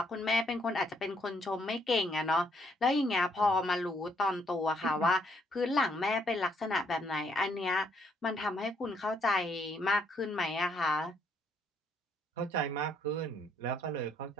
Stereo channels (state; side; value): normal; both; correlation 0.70